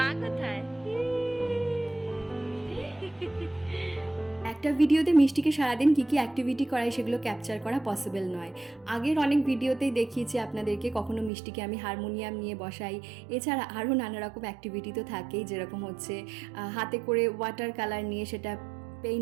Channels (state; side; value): drops out; left; at 11.3 s